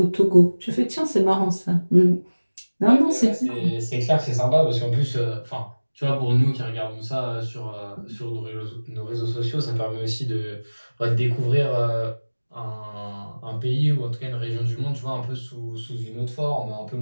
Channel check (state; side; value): inverted; both; correlation -1.00